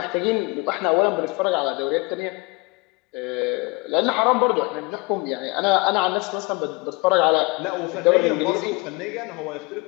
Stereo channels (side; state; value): right; quieter; 27.1 dB